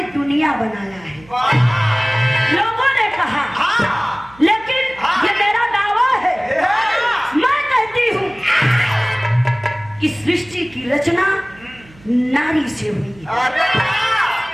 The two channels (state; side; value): noise; right; hum, 25 dB below the sound